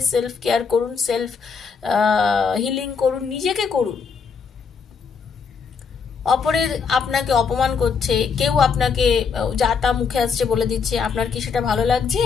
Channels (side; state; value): right; quieter; 5.8 dB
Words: সেলফ কেয়ার করুন, সেলফ হিলিং করুন, নিজেকে করুন। অপরের আপনাকে অপমান করছে, কেউ আপনাকে যা তা মুখে আসছে বলে দিচ্ছে, আপনার কি সেটা ভালো লাগছে?